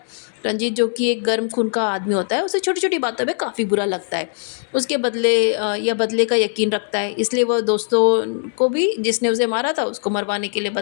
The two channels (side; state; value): right; silent; digital silence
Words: रंजीत जो कि एक गर्म खून का आदमी होता है, उसे छोटी छोटी बातों में काफ़ी बुरा लगता है। उसके बदले या बदले का यकीन रखता है, इसलिए वह दोस्तों को भी, जिसने उसे मारा था, उसको मरवाने के लिए